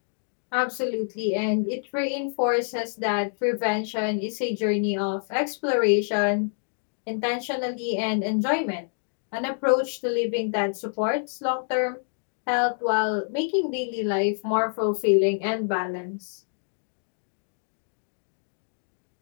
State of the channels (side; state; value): right; silent; digital silence